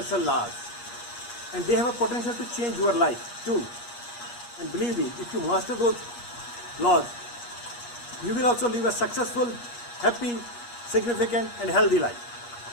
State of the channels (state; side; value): late; right; 8.4 ms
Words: laws and they have a potential to change your life too. And believe me, if you master those laws, you will also live a successful, happy, significant and healthy life.